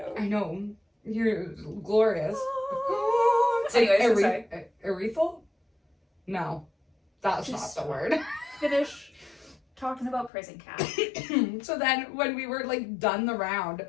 I know. You're glorious. Anyways, I'm sorry. Urethral? No. That's Just not the word. Finish talking about prison cat. So then when we were like done the round,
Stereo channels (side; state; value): right; drops out; at 10.3 s